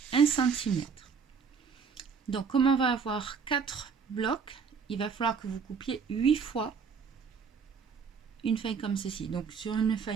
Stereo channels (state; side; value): quieter; left; 5.9 dB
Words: 1 cm. Donc, comme on va avoir 4 blocs, il va falloir que vous coupiez 8 fois une feuille comme ceci. Donc, sur une